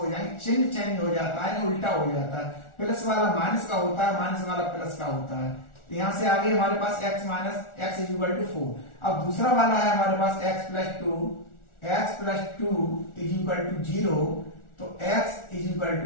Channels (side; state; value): right; late; 1.4 ms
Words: जाएंगे। चिन्ह चेंज हो जाता है, उल्टा हो जाता है, प्लस वाला माइनस का होता है, माइनस वाला प्लस का होता है। तो यहां से आगे हमारे पास x minus x is equal to 4। अब दूसरा वाला है हमारे पास x plus 2 is equal to 0, तो x is equal